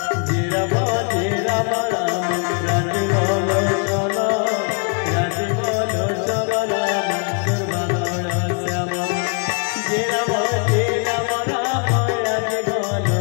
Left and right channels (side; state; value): right; quieter; 37.9 dB